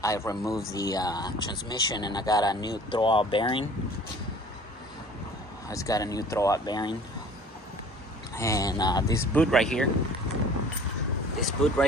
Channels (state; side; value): normal; both; correlation 0.48